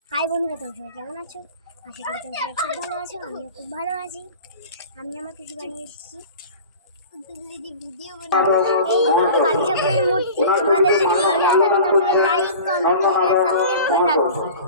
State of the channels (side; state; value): both; inverted; correlation -0.38